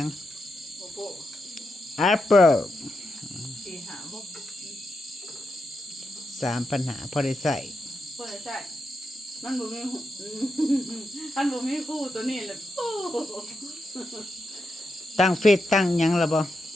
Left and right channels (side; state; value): both; normal; correlation 0.86